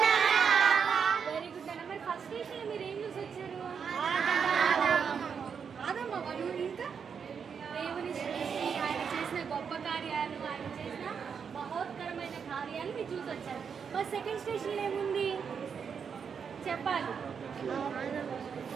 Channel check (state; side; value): quieter; left; 6.6 dB